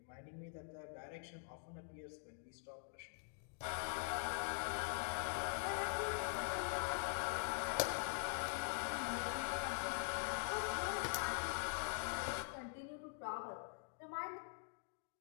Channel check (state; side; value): silent; right; digital silence